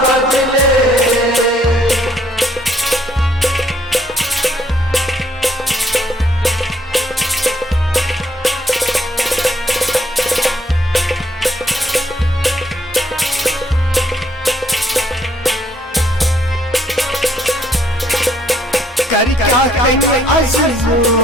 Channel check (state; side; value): normal; both; correlation 0.67